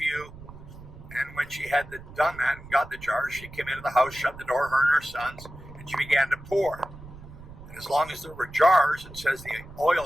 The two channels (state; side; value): noise; right; rumble, 17 dB below the sound